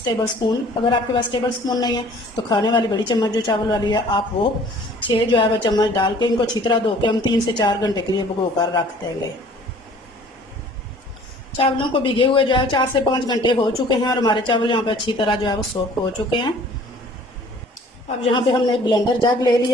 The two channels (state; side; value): normal; both; correlation 0.52